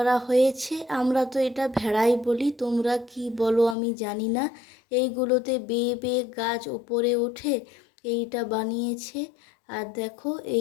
হয়েছে। আমরা তো এটা ভেড়াই বলি, তোমরা কি বলো আমি জানি না। এইগুলোতে বেয়ে বেয়ে গাছ ওপরে ওঠে, এইটা বানিয়েছে। আর দেখো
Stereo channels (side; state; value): right; drops out; at 3.8 s